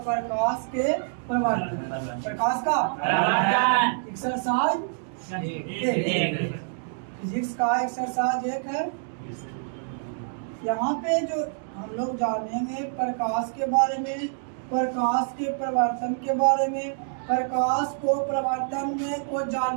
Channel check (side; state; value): left; silent; digital silence